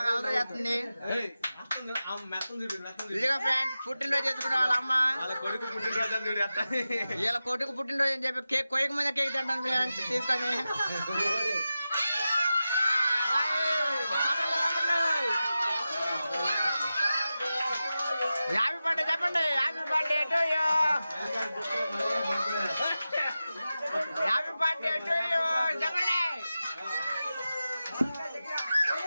అలవాటు చేస్తుంది. ఇదిగో ఫ్రెండ్స్ పుట్టినరోజు చేసుకునే వాళ్ళ అమ్మ. వీళ్ళ కొడుకు పుట్టినరోజు అని చెప్పి కేక్ కొయ్యక ముందే కేక్ తింటాను ఫ్రెండ్స్ తీసుకొని. హ్యాపీ బర్త్డే చెప్పండి. Happy birthday to you. Happy birthday to you చెప్పండి.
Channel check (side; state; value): both; inverted; correlation -0.93